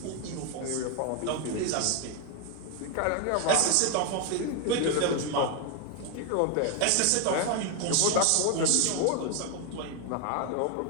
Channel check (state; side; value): different; both; correlation 0.01